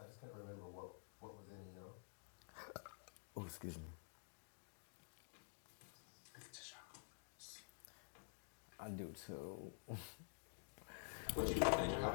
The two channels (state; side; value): silent; right; digital silence